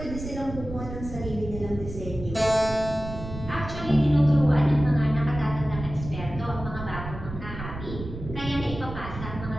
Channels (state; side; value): noise; right; rumble, 10 dB below the sound